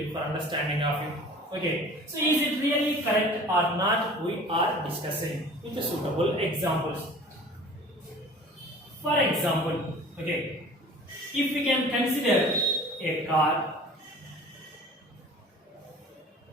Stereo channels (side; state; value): both; normal; correlation 0.44